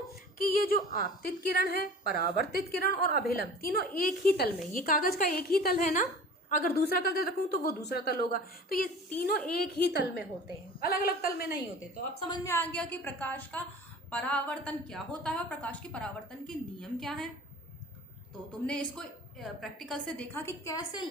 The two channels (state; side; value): normal; both; correlation 0.42